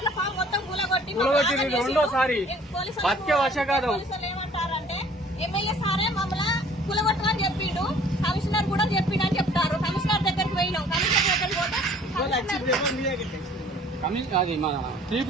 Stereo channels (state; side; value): normal; both; correlation 0.54